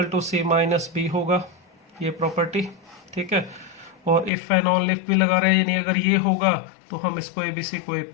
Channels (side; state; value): right; drops out; at 4.3 s